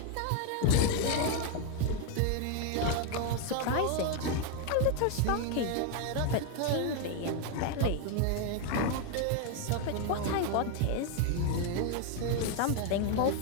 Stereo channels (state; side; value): different; both; correlation 0.01